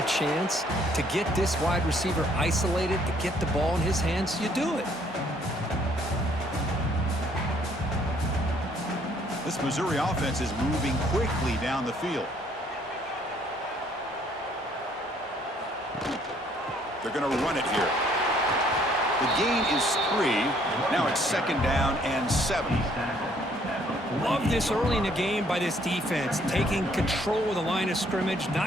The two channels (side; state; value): both; normal; correlation 0.63